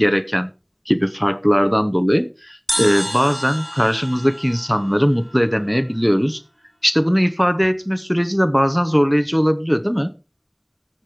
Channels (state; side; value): identical; both; correlation 1.00